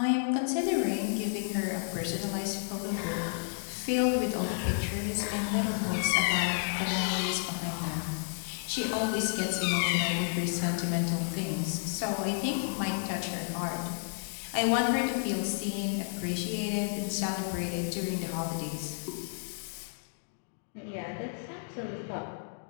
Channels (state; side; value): silent; right; digital silence